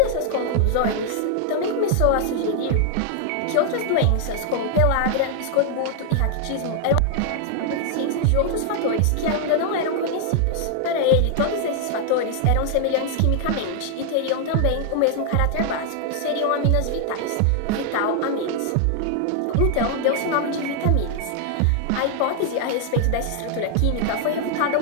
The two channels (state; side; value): different; both; correlation 0.00